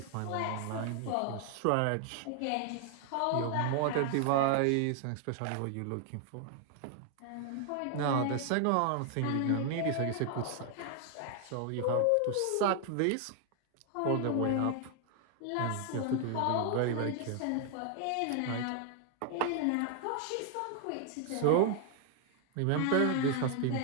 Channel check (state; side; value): different; both; correlation 0.00